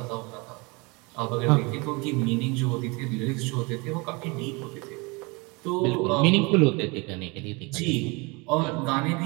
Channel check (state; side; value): quieter; left; 27.7 dB